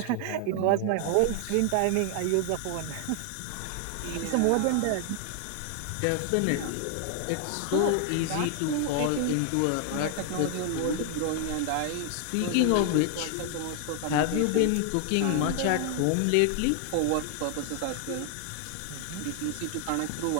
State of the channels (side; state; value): both; different; correlation 0.00